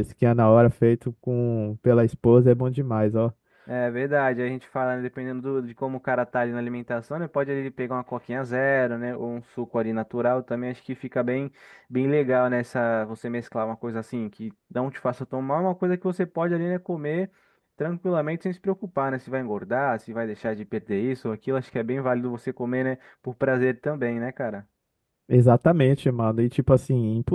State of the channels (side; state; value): both; identical; correlation 1.00